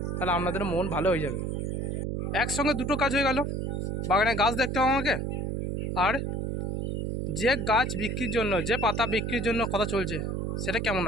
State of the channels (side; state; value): right; noise; hum, 1 dB below the sound